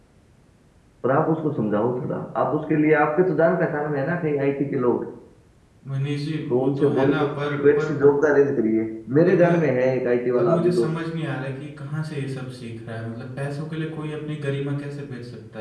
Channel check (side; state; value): both; identical; correlation 1.00